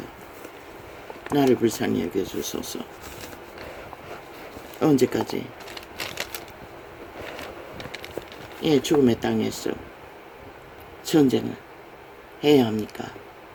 나를 불쌍히 여겨주소서. 언제까지 죽음의 땅에서 전쟁을 해야 합니까?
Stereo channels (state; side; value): identical; both; correlation 1.00